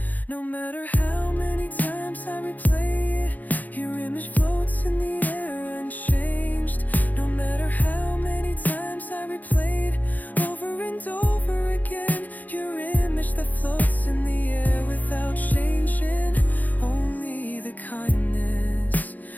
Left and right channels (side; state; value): right; late; 0.082 ms